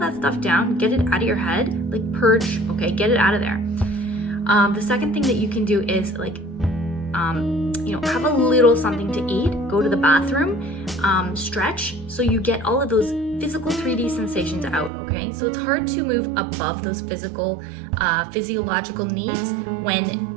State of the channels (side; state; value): left; drops out; at 14.9 s